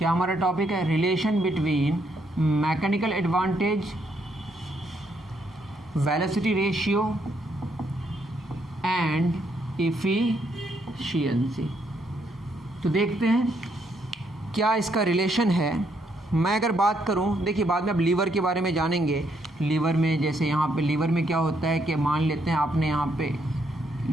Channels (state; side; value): normal; both; correlation 0.74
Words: हमारा टॉपिक है, relation between mechanical advantage, velocity ratio and efficiency. तो देखते हैं क्या इसका रिलेशन है। मैं अगर बात करूं, देखिए बाद में अब लीवर के बारे में जानेंगे। लीवर में जैसे यहाँ पे लीवर में क्या होता है कि मान लेते हैं आपने यहाँ पे